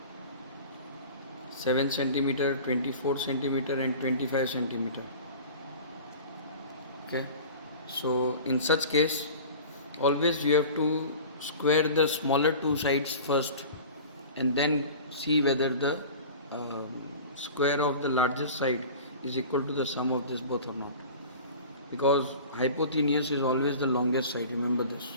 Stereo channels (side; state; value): both; inverted; correlation -0.39